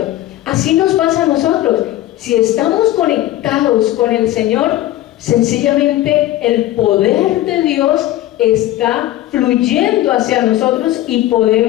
Así nos pasa a nosotros. Si estamos conectados con el Señor, sencillamente el poder de Dios está fluyendo hacia nosotros y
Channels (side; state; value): right; quieter; 14.8 dB